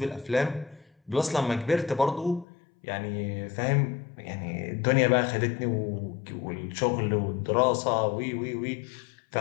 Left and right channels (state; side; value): drops out; right; at 2.5 s